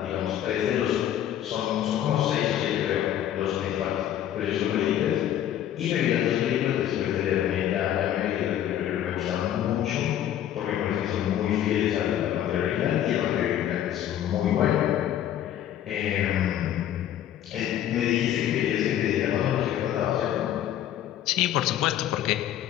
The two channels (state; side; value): quieter; right; 11.2 dB